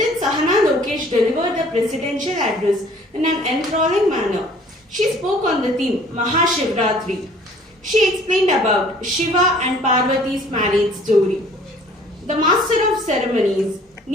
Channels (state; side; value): normal; both; correlation 0.54